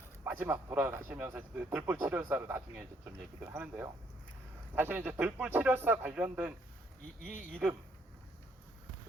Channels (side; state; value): both; normal; correlation 0.68